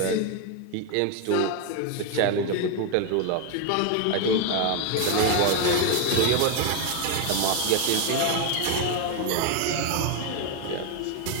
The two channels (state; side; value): different; both; correlation 0.01